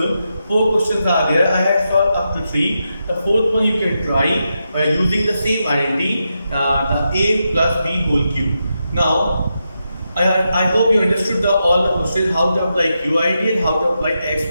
4 questions are there. I have solved up to 3. The fourth one you can try by using the same identity, the a plus b whole cube. Now I hope you understood all the questions, how to apply q identity and how to apply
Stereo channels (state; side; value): inverted; both; correlation -0.86